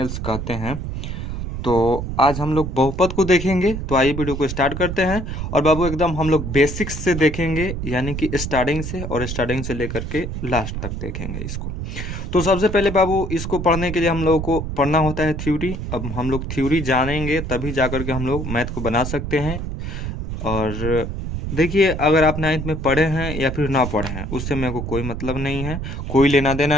कहते हैं। तो आज हम लोग बहुपद को देखेंगे। तो आइए वीडियो को स्टार्ट करते हैं। और बाबू एकदम हम लोग बेसिक्स से देखेंगे, यानी कि स्टार्टिंग से, और स्टार्टिंग से लेकर के लास्ट तक देखेंगे इसको। तो सबसे पहले बाबू इसको पढ़ने के लिए हम लोगों को पढ़ना होता है थ्योरी। अब हम लोग थ्योरी जानेंगे तभी जाकर के हम लोग मैथ को बना सकते हैं। और देखिए, अगर आप 9th में पढ़े हैं या फिर ना पढ़े हैं, उससे मेरे को कोई मतलब नहीं है, कोई लेना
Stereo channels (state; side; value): noise; right; rumble, 5 dB below the sound